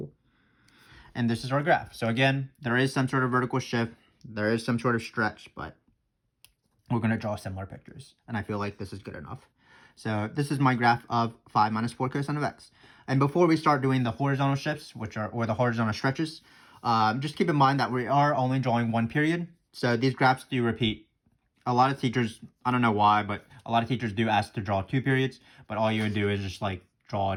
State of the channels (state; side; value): identical; both; correlation 1.00